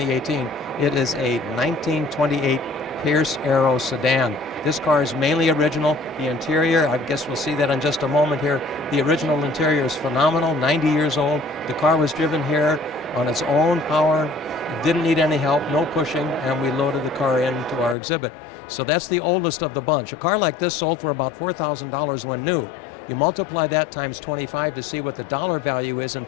It is a 1928 Pierce Arrow sedan. This car is mainly original. The interior, I guess we'll see that in just a moment here. The original interior is phenomenal, 90 years old. The car was driven here on its own power. It didn't need any help, no pushing, and we loaded the car into our exhibit. So that's the oldest of the bunch. A car like this sold for about $4,000 when new. You multiply that times 25 to see what the dollar value is in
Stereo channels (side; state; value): right; drops out; at 17.9 s